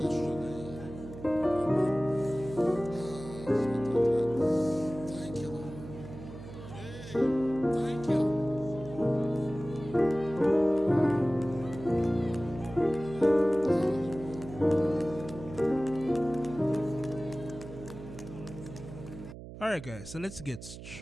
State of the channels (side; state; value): right; noise; hum, 13 dB below the sound